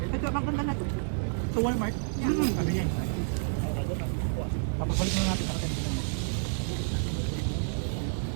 Ito, maganda na to. Sa Walmart. Sabi niya. Tapos balik na natin sa katin.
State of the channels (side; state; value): left; silent; digital silence